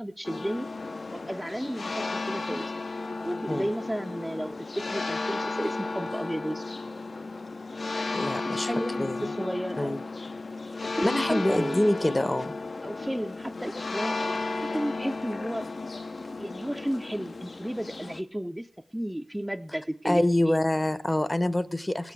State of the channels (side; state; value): both; normal; correlation 0.98